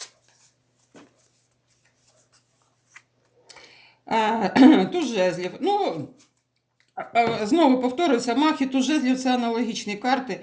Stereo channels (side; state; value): both; identical; correlation 1.00